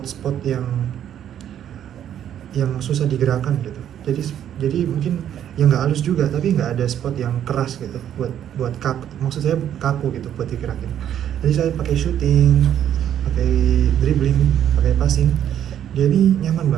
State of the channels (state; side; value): quieter; left; 10.2 dB